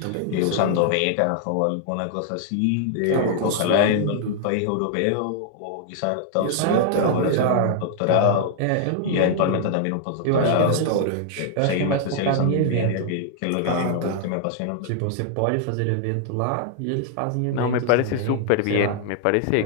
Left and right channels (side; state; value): both; different; correlation -0.01